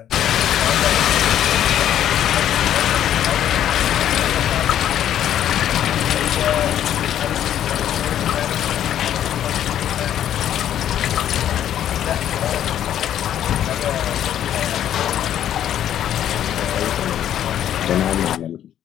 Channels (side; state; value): right; quieter; 10.8 dB